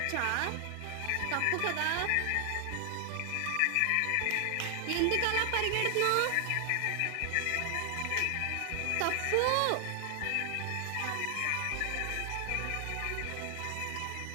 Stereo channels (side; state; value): both; different; correlation 0.00